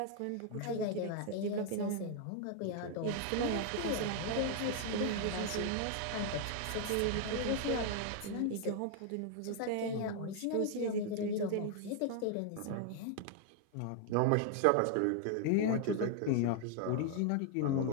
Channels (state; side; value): different; both; correlation 0.00